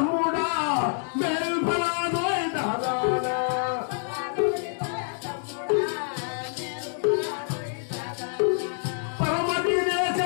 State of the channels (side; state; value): right; silent; 60 dB below the other